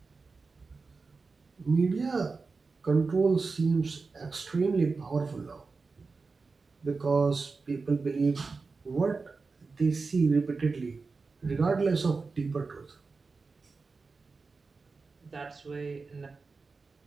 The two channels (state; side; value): quieter; left; 4.3 dB